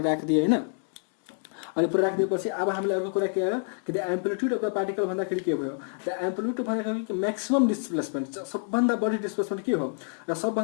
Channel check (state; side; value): silent; right; 56 dB below the other